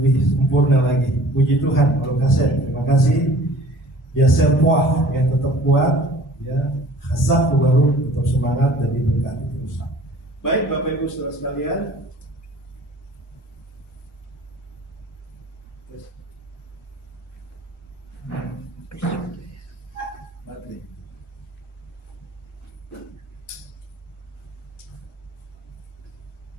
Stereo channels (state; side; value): normal; both; correlation 0.48